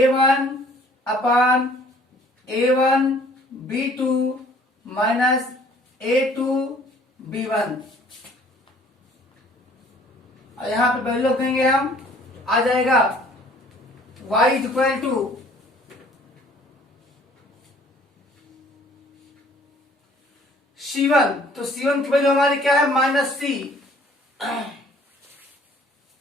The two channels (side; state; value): both; normal; correlation 0.55